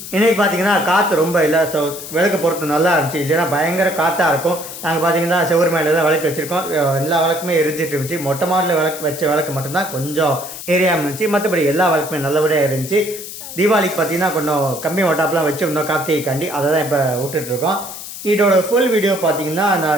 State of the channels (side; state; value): left; noise; hiss, 11 dB below the sound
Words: இன்றைக்கி பார்த்திங்கன்னா காற்று ரொம்ப இல்லை. ஸோ விளக்கு பொறுத்து நல்லா இருந்துச்சு. இல்லைன்னா பயங்கர காற்றாக இருக்கும். நாங்கள் பார்த்திங்கன்னா செவ்வறு மேலே தான் விளக்கு வச்சுருக்கோம். எல்லா விளக்குமே எரிஞ்சிட்டு இருந்துச்சு. மொட்டை மாடலில் வச்ச விளக்கு மட்டும்தான் கொஞ்சம் ஏரியாமல் இருந்துச்சு. மற்றபடி எல்லா விளக்குமே நல்லபடியாக இருந்துச்சு. தீபாவளிக்கு பார்த்திங்கன்னா கொஞ்சம் கம்மி ஒட்டாப்லாம் வச்சுருந்தோம் கார்த்திகைக்காண்டி. அதை தான் இப்போ விட்டுட்ருக்கோம். இதோட ஃபுல் வீடியோ பார்த்தீங்கன்னா